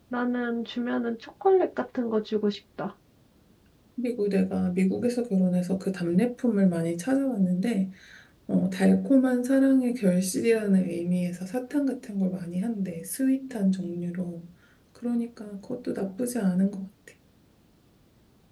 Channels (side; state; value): both; identical; correlation 1.00